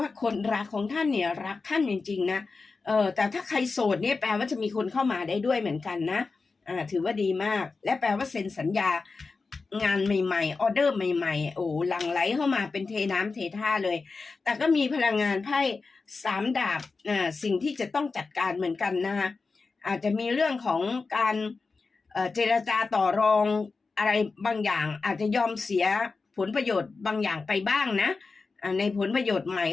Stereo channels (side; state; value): right; quieter; 4.2 dB